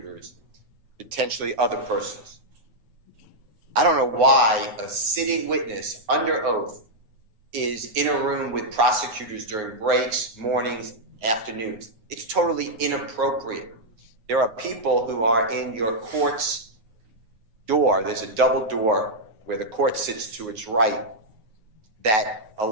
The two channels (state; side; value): late; left; 9.4 ms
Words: potentially other persons. I don't know why a sitting witness under oath is in a room with prosecutors during breaks, mornings, afternoons. It's totally inappropriate. There are people who are in your court's door. There's a double door where the court sits to its right that